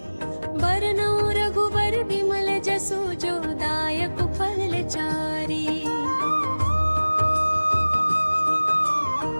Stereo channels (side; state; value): both; inverted; correlation -1.00